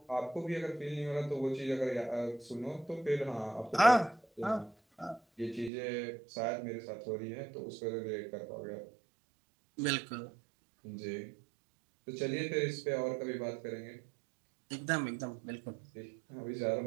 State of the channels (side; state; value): left; drops out; at 5.7 s